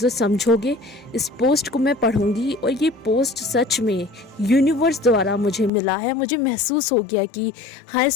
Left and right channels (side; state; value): right; drops out; at 5.7 s